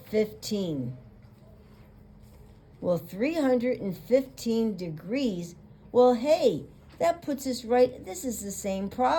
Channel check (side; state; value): both; identical; correlation 1.00